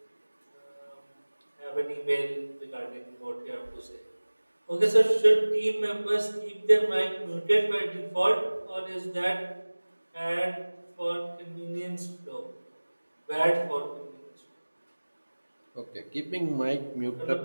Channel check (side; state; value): both; inverted; correlation -1.00